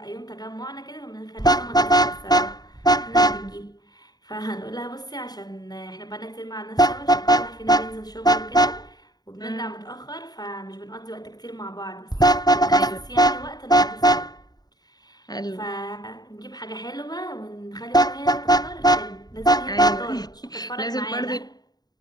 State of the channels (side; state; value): right; late; 0.19 ms